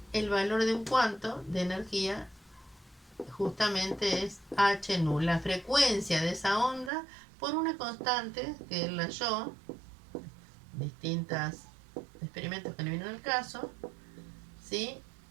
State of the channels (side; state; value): left; drops out; at 6.9 s